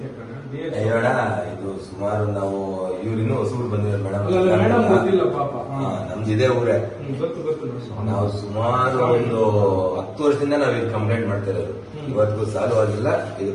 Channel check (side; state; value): both; identical; correlation 1.00